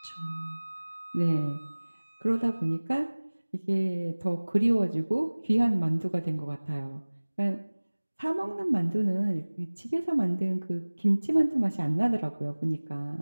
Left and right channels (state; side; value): inverted; both; correlation -1.00